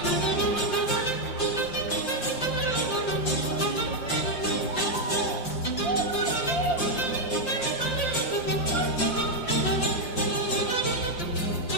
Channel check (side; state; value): right; late; 5.7 ms